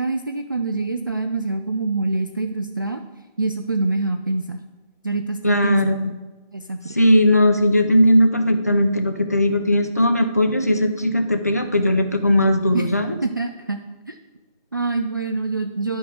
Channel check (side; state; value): both; inverted; correlation -0.82